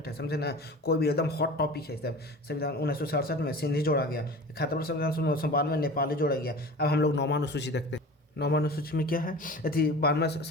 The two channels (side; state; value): both; normal; correlation 0.36